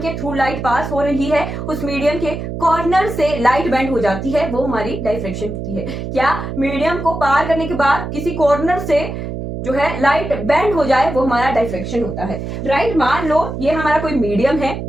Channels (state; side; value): noise; right; hum, 6 dB below the sound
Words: थ्रू लाइट पास हो रही है उस मीडियम के कॉर्नर से लाइट बेंड हो जाती है, वो हमारी डायफ्रैक्शन होती है। क्या, मीडियम को पार करने के बाद किसी कॉर्नर से जो है लाइट बेंड हो जाए, वो हमारा डायफ्रैक्शन होता है, राइट। मान लो ये हमारा कोई मीडियम है,